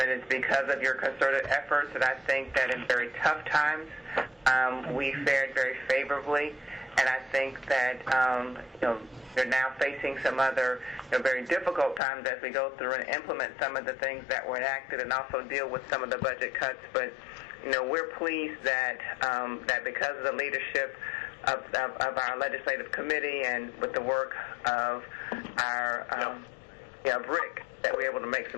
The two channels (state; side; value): drops out; right; at 12.0 s